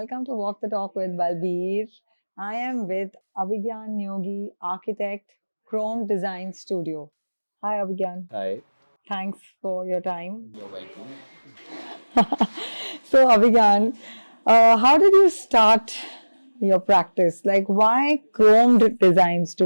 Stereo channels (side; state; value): both; inverted; correlation -1.00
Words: to Walk the Talk with Balbir. I am with Abhigyan Neogi, architect, Chrome Design Studio. Hi, Abhigyan. Hi, Thanks for your time. you're welcome. So, Abhigyan, how did you start your practice? Like, why Chrome Design